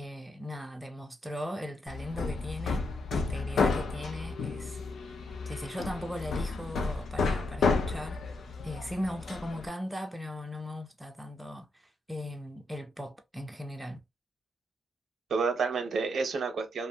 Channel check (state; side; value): normal; both; correlation 0.80